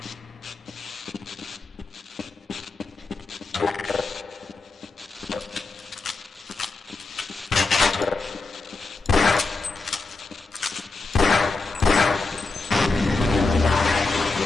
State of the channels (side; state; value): right; quieter; 3.7 dB